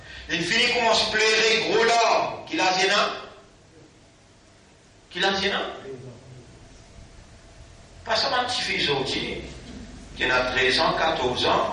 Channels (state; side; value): identical; both; correlation 1.00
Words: Il finit comment se plairait gros l'homme. Qui l'a dit, non? Qui l'a dit, non? Pas seulement un petit fils aujourd'hui, qui a 13 ans, 14